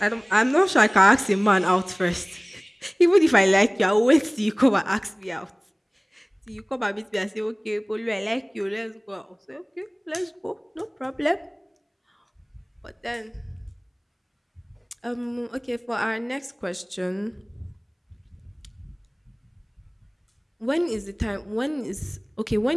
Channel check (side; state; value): both; identical; correlation 1.00